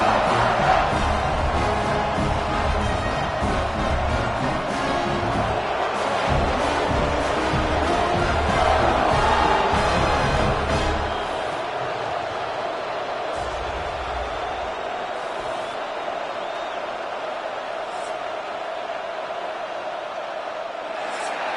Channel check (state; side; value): identical; both; correlation 1.00